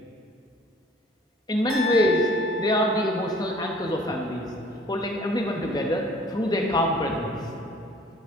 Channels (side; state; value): both; normal; correlation 0.53